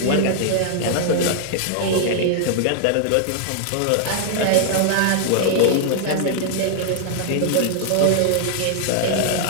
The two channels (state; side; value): different; both; correlation -0.01